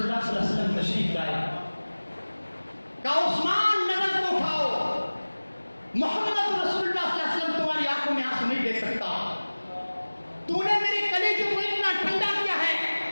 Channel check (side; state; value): both; inverted; correlation -1.00